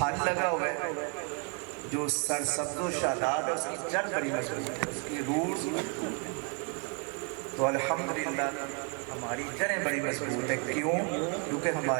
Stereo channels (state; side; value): quieter; left; 36.1 dB